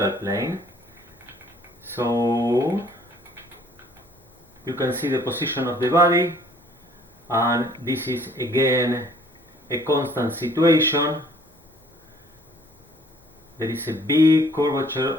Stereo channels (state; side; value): normal; both; correlation 0.58